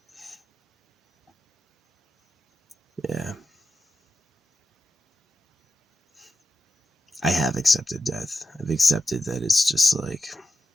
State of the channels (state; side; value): normal; both; correlation 0.89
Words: yeah. I have accepted death. I've accepted that it's just like